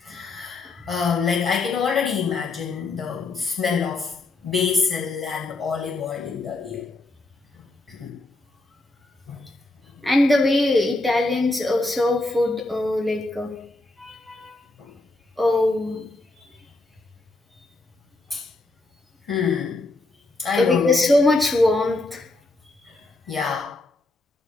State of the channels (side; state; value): right; quieter; 3.0 dB